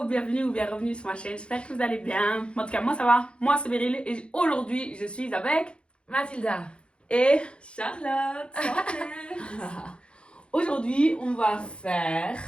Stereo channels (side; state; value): right; late; 0.056 ms